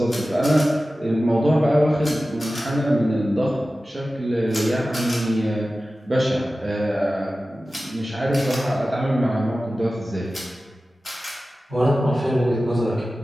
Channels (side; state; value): both; normal; correlation 0.95